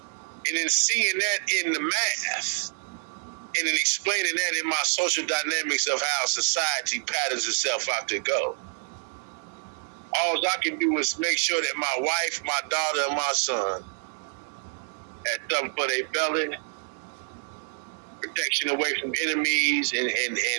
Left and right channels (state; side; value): silent; left; 60 dB below the other